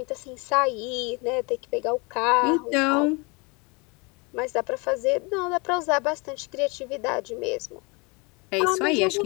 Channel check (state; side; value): quieter; right; 29.1 dB